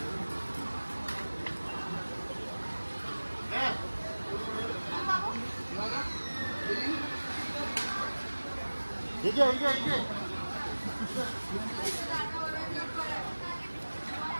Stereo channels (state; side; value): inverted; both; correlation -1.00